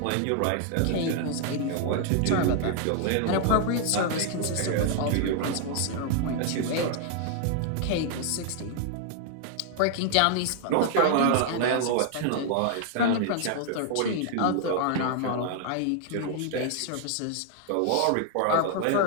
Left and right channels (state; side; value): different; both; correlation 0.00